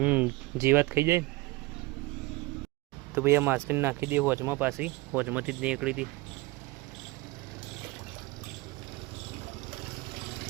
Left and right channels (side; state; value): left; quieter; 20.9 dB